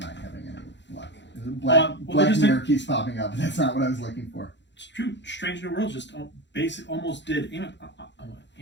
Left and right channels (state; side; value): late; right; 0.52 ms